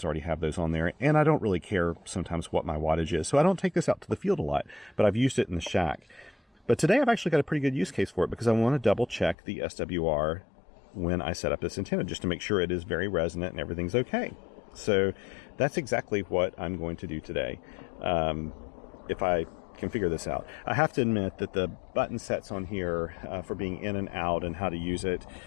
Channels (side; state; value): right; drops out; at 9.3 s